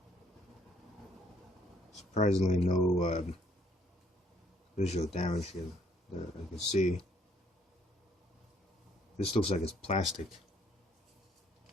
Surprisingly, no visual damage here that I can see. This looks like it's plastic.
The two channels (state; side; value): normal; both; correlation 0.66